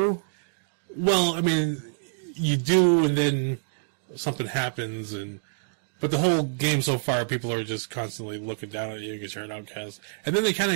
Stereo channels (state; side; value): silent; left; digital silence